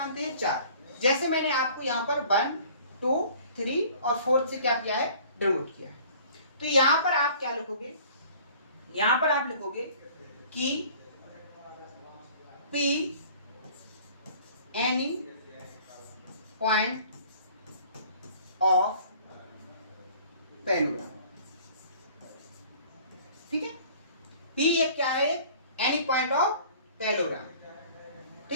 हैं? चार। जैसे मैंने आपको यहाँ पर 1, 2, 3 और 4 से क्या किया है, डिनोट किया है। तो यहाँ पर आप क्या लिखोगे, यहाँ पर आप लिखोगे कि P any point of parallelogram, ठीक है। पी एक क्या है, एनी पॉइंट ऑफ पैलोग्राम,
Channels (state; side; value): inverted; both; correlation -0.50